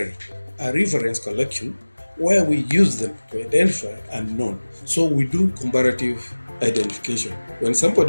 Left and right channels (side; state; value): both; inverted; correlation -1.00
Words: a reference collection, where we use them to identify unknown. So we do comparative identification. When